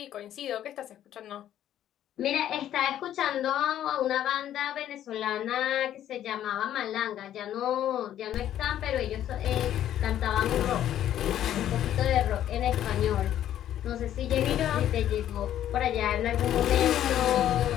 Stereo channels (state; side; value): quieter; right; 11.4 dB